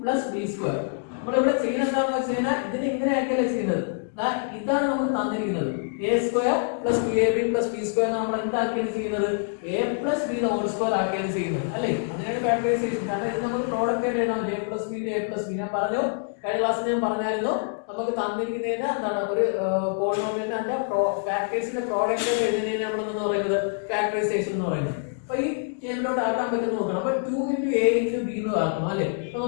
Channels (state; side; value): silent; right; digital silence